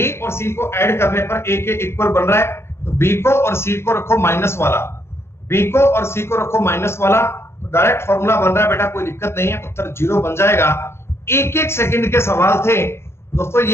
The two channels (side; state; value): right; late; 0.12 ms